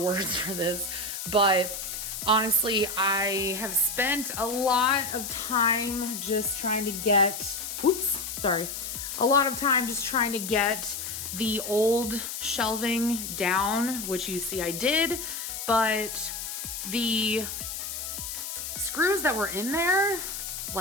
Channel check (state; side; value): noise; left; hiss, 6 dB below the sound